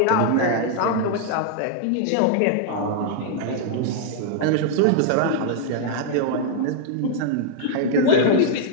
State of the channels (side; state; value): both; different; correlation -0.01